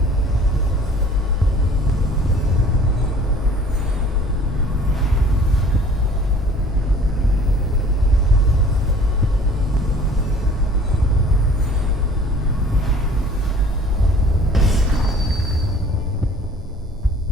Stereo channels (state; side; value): normal; both; correlation 0.50